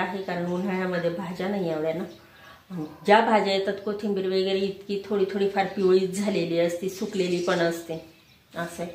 कारण उन्हाळ्यामध्ये भाज्या नाही एवढ्या ना. ज्या भाज्या येतात कोथिंबीर वगैरे इतकी थोडी फार पिवळीच झालेली असते, सुकलेली पण असते. असं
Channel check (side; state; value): both; identical; correlation 1.00